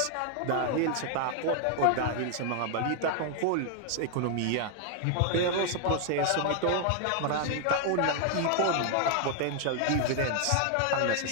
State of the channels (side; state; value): both; different; correlation 0.00